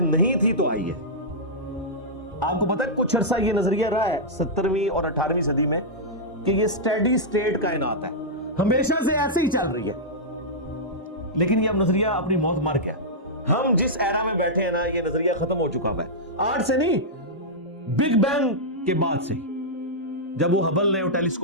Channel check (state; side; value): normal; both; correlation -0.10